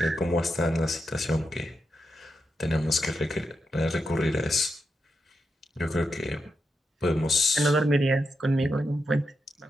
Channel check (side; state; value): both; normal; correlation 0.85